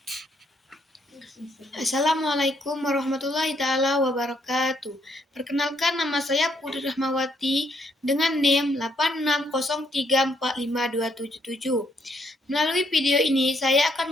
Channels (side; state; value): both; normal; correlation 0.72